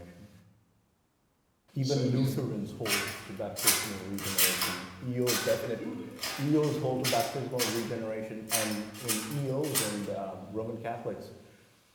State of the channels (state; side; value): identical; both; correlation 1.00